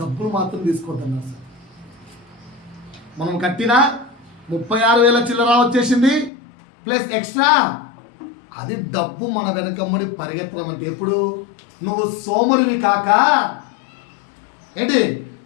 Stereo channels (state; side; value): drops out; right; at 6.3 s